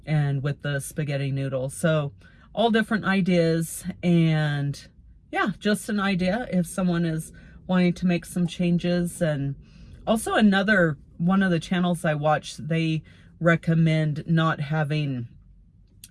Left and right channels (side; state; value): both; identical; correlation 1.00